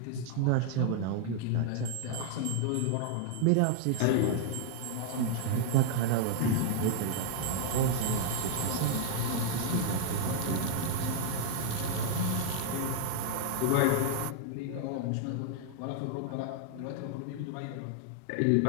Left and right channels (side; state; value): both; different; correlation -0.01